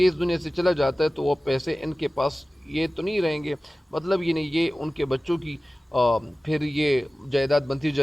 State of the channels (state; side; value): normal; both; correlation 0.97